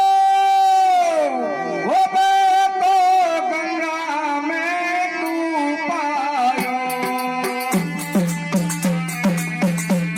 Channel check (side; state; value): both; identical; correlation 1.00